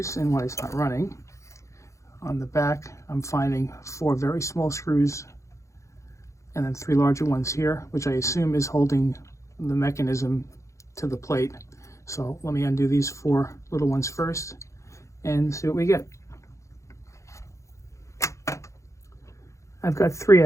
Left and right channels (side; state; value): right; late; 0.15 ms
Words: and why it's not running. On the back, I'm finding 4 very small screws and then 3 larger ones here, which I assume is holding the mechanism to the plate. So let me undo these 4 little ones first and see what we get. I've got 3